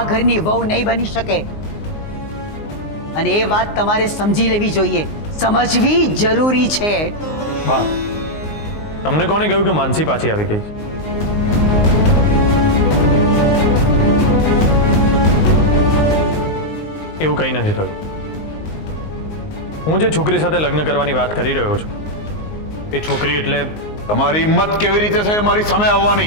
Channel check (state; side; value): late; right; 19 ms